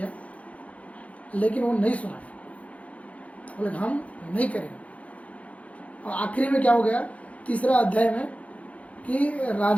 लेकिन वो नहीं सुना, बोले हम नहीं करेंगे। और आखिरी में क्या हो गया? तीसरा अध्याय में कि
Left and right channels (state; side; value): late; right; 0.066 ms